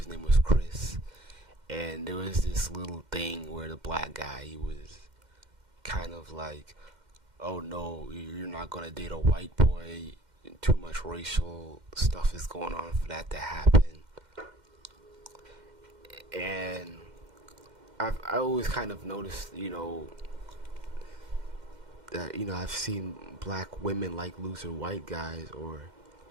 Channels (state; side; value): late; left; 2.1 ms